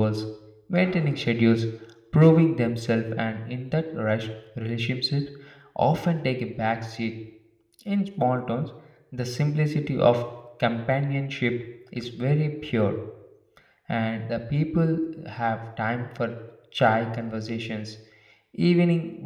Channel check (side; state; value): both; identical; correlation 1.00